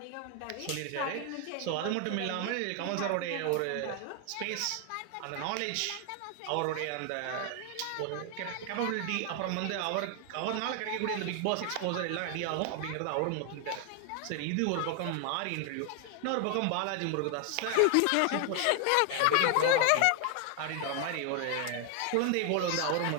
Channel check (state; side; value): different; both; correlation 0.00